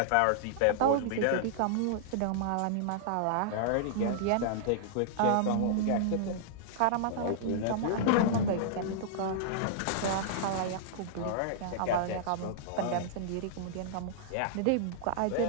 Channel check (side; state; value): both; different; correlation -0.01